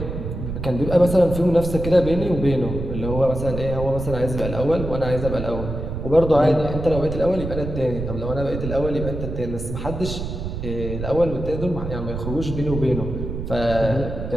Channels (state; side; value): noise; right; rumble, 6 dB below the sound